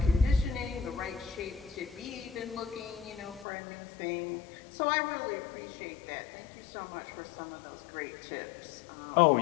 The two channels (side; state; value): right; drops out; at 3.5 s